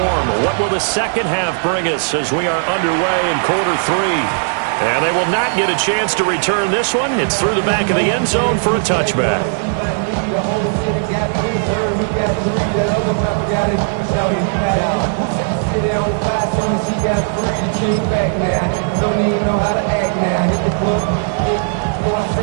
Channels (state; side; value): silent; left; digital silence